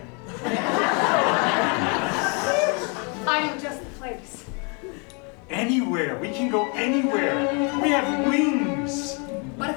I know just the place. Anywhere. We can go anywhere. We have wings. But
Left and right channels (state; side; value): quieter; right; 35.0 dB